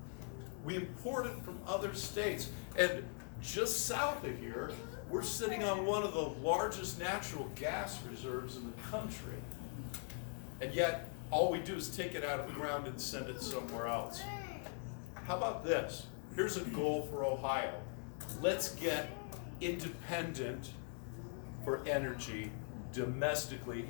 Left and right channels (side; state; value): right; silent; 50 dB below the other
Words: We import it from other states. And just south of here, we're sitting on one of the largest natural gas reserves in the country. And yet, all we do is take it out of the ground and send it somewhere else. How about this? Here's a goal for Ohio. Let's get independent for energy domestically